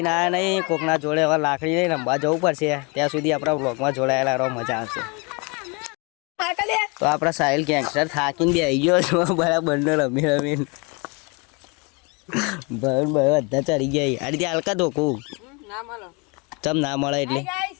આવ્યા નહીં, કોકના જોડે હવે લાકડી લઈને રમવા જવું પડશે। ત્યાં સુધી આપણા વ્લોગમાં જોડાયેલા રહો, મજા આવશે। તો આપણા સાહિલ ગેંગસ્ટર થાકીને બેસી ગયો છો, બરાબર રમી રમીને ભાઈ બધા ચડી ગયા। આ રીતે હલકા ધોકું ચમ ના મળે એટલે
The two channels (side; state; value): right; quieter; 30.4 dB